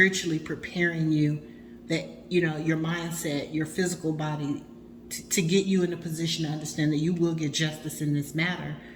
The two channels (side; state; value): both; identical; correlation 1.00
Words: preparing you, that your mindset, your physical body, to get you in a position to understand that you will get justice in this matter,